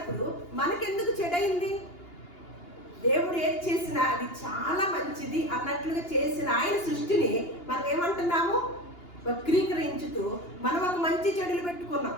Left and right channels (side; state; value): right; late; 2.8 ms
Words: మనకెందుకు చెడైంది? దేవుడు ఏది చేసినా అది చాలా మంచిది అన్నట్లుగా చేసిన ఆయన సృష్టిని మనం ఏమంటున్నాము? వక్రీకరించుతూ మనం ఒక మంచి చెడులు పెట్టుకున్నాం.